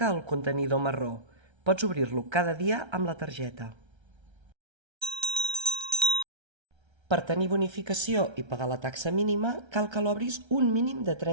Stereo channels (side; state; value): left; late; 1.3 ms